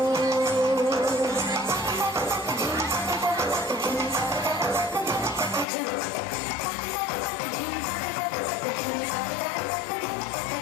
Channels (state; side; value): drops out; right; at 5.7 s